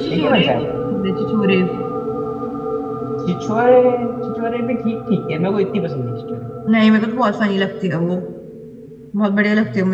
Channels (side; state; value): both; identical; correlation 1.00